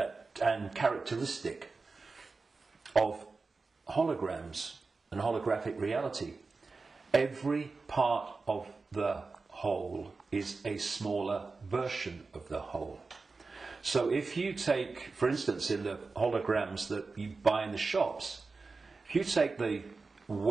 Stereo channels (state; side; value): quieter; left; 4.1 dB